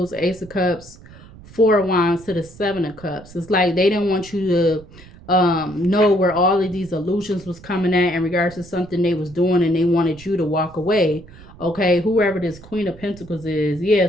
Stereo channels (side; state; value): right; noise; rumble, 20 dB below the sound